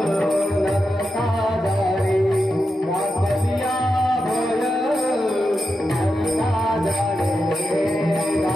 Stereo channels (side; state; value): both; normal; correlation 0.88